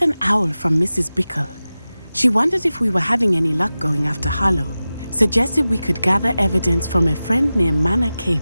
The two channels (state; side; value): inverted; both; correlation -0.95